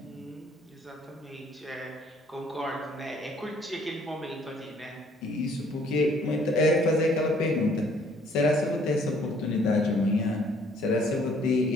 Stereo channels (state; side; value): normal; both; correlation 0.61